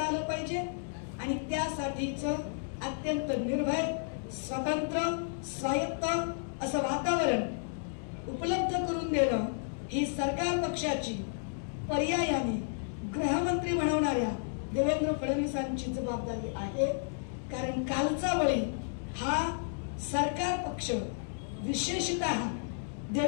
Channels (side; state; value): right; silent; digital silence